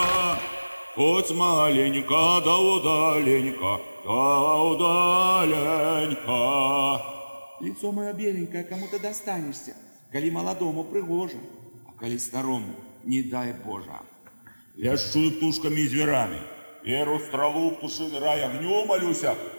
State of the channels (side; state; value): both; inverted; correlation -1.00